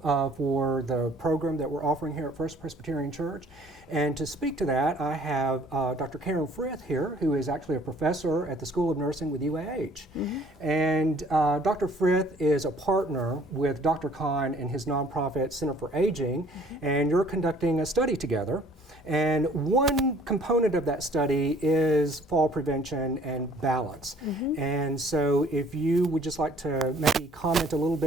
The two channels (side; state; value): both; normal; correlation 0.56